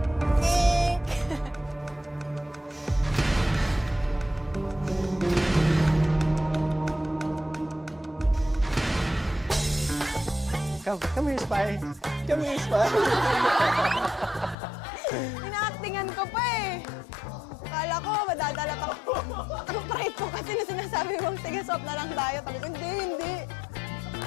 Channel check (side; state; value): right; drops out; at 14.6 s